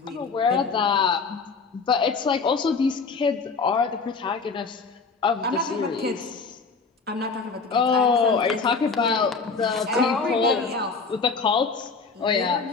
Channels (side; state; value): right; quieter; 4.7 dB